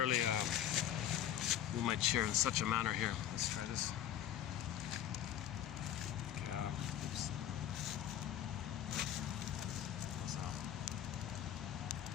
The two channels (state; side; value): quieter; right; 10.8 dB